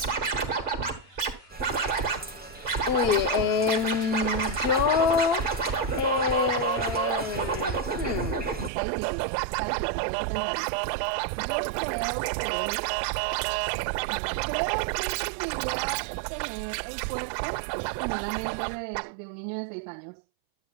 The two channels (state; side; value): drops out; left; at 8.7 s